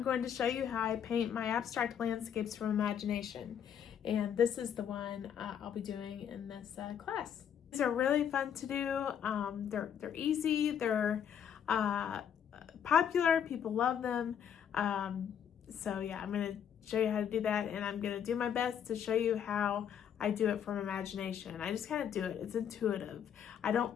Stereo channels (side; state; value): right; quieter; 8.6 dB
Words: going to show you how I paint my abstract landscapes from imagination. And this is the one I'll be doing in this class. These are really fun to do. They're easy, they're popular, people love them. So yeah, I'm going to show you how to do that, and I'm going to do my best to show you how I do it from imagination. I just kind of do it. It's intuitive. I